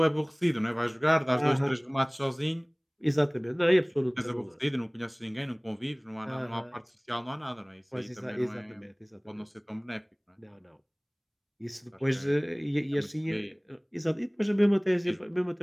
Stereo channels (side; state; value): both; identical; correlation 1.00